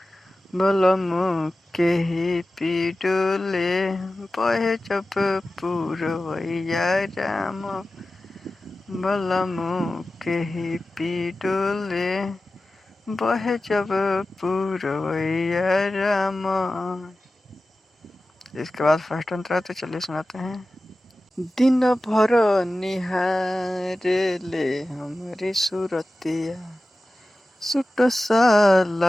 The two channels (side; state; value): both; normal; correlation 0.95